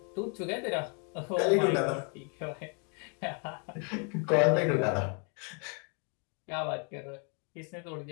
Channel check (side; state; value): right; quieter; 36.8 dB